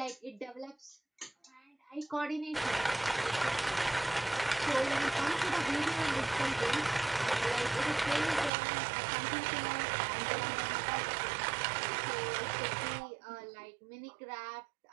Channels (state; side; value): drops out; left; at 8.5 s